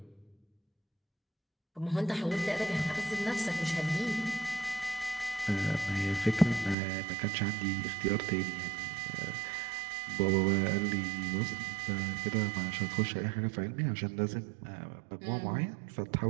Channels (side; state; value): left; drops out; at 6.8 s